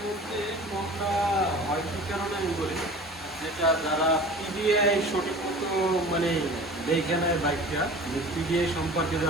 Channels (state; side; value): normal; both; correlation 0.41